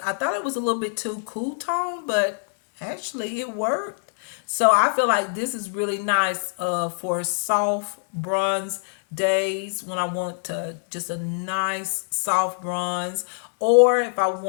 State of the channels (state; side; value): silent; right; 62 dB below the other